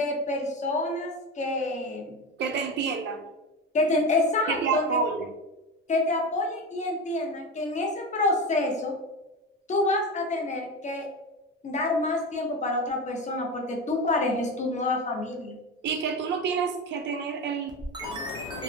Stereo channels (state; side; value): normal; both; correlation 0.22